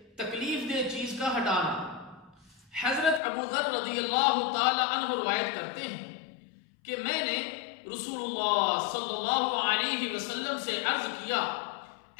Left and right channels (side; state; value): right; drops out; at 3.2 s